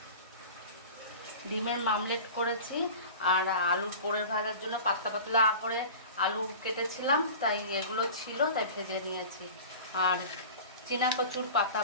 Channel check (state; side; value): inverted; both; correlation -0.37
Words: ডিমের মামলেট করেছি, আর আলুর পোড়ের ভাজার জন্য পাতলা পাতলা করে আলু কেটেছিলাম, তাই এগুলো ছিল, তাই ভেজে নিয়েছি। আর চীনা কচুর পাতা